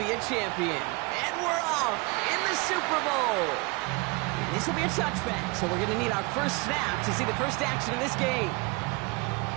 a champion. And we're off in the Super Bowl. And this will be a touchback, so we're going to need our first snap to see the first action of this game.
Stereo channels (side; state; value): left; quieter; 27.1 dB